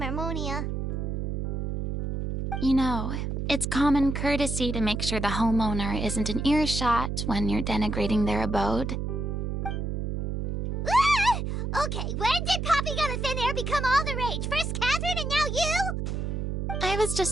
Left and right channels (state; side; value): noise; right; hum, 2 dB below the sound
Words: You know, it's common courtesy to make sure the homeowner isn't in earshot when you're denigrating their abode. Ah! Okay, when did popping out of thin air become all the rage? First Catherine and now you? I was